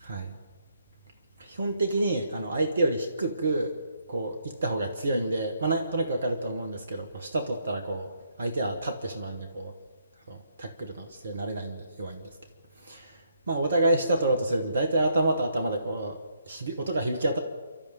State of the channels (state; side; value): inverted; both; correlation -0.73